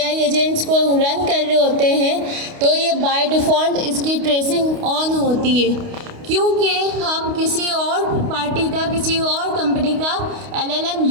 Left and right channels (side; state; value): left; late; 29 ms